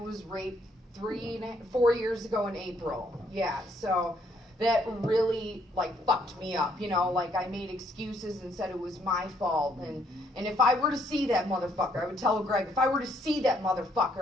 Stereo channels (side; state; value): both; normal; correlation 0.69